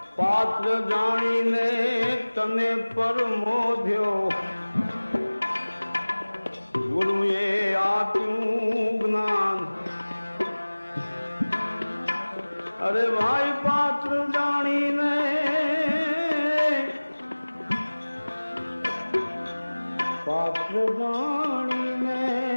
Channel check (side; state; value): both; inverted; correlation -1.00